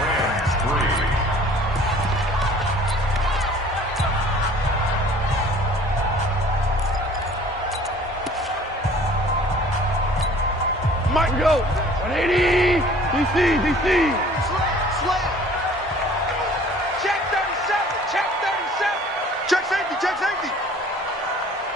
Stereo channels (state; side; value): normal; both; correlation 0.51